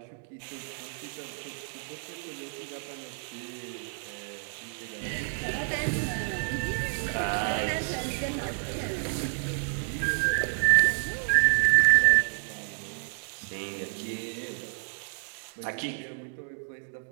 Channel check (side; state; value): left; silent; digital silence